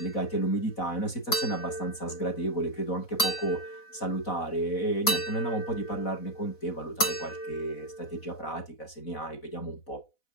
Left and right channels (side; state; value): right; late; 4.1 ms